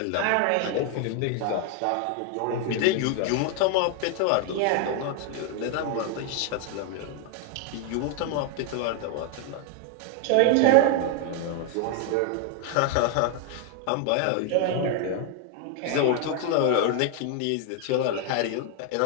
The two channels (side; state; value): both; different; correlation 0.01